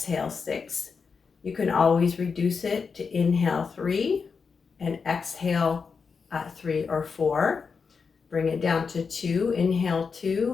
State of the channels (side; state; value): right; quieter; 5.4 dB